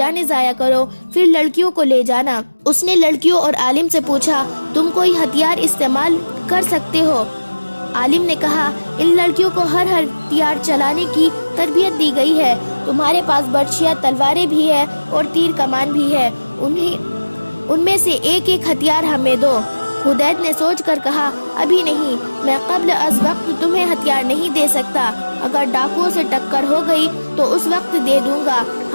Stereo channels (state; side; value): inverted; both; correlation -1.00